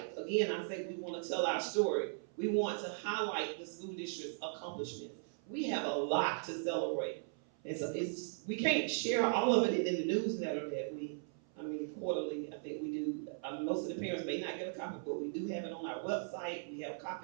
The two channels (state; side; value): silent; left; 52 dB below the other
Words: again, I say we want to tell our story. We want to highlight the school district's accomplishments. We have a lot to celebrate. And so we can't share all of it in the newsletter that quarterly, I think we do. Most of the parents may not get a copy, but we do have it on our website. We have